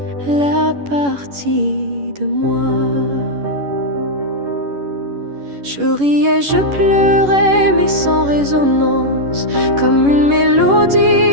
la partie de moi. Je riais, je pleurais, mais sans résonance, comme une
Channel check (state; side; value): late; left; 11 ms